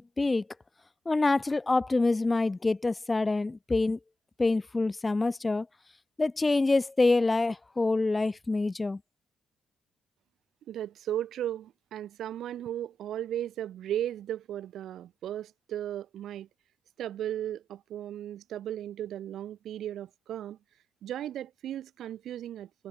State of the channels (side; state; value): both; normal; correlation 0.90